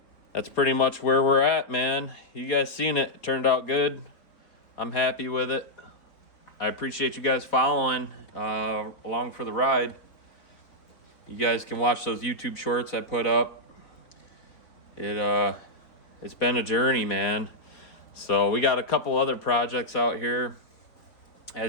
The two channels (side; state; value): right; late; 4.0 ms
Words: that's pretty much where we're at, man. You guys seen it. It turned out good. I'm happy with it. I appreciate you guys following along for the ride. You guys can watch those YouTube shorts I put up. It's been a journey, man. So we got a couple other projects out here.